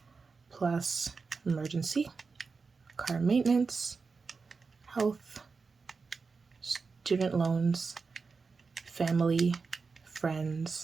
plus emergency, car maintenance, health, student loans, family,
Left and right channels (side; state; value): left; quieter; 4.7 dB